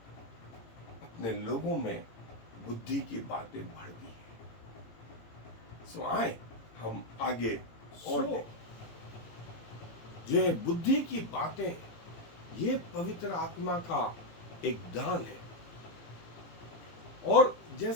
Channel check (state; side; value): late; right; 18 ms